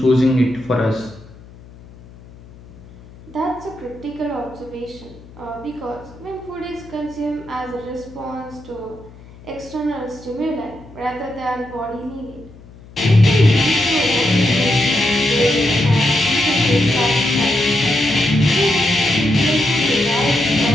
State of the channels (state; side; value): noise; left; hum, 21 dB below the sound